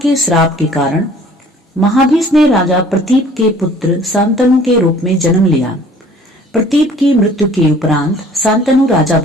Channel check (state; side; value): normal; both; correlation 0.52